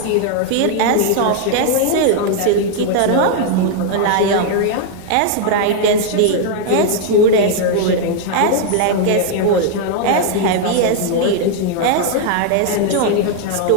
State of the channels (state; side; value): different; both; correlation 0.00